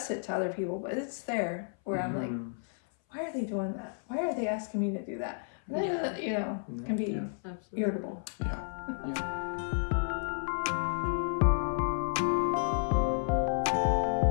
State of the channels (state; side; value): silent; right; 57 dB below the other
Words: it to other people, but it's there where I'm like, why are they doing that? Why are they asking me to do that? It can be irritable.